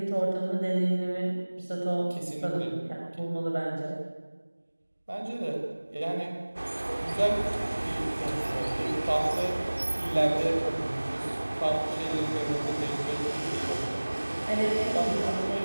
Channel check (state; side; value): inverted; both; correlation -1.00